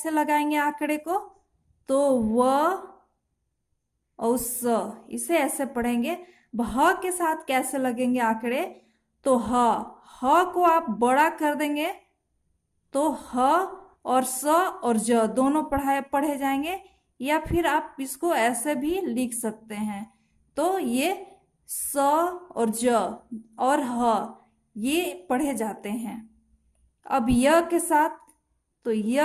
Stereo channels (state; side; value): identical; both; correlation 1.00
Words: लगाएंगे आंकड़े को, तो व और स, इसे ऐसे पढ़ेंगे। ह के साथ कैसे लगेंगे आंकड़े, तो ह को आप बड़ा कर देंगे, तो ह और स और ज दोनों पढ़े जाएंगे, या फिर आप इसको ऐसे भी लिख सकते हैं, तो ये स और ज और ह ये पढ़े जाते हैं। अब य के साथ, तो